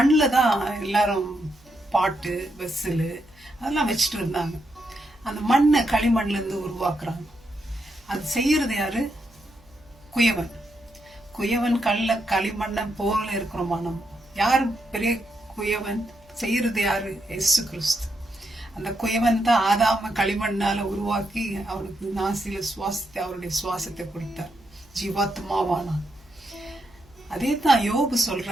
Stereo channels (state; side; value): noise; right; hum, 29 dB below the sound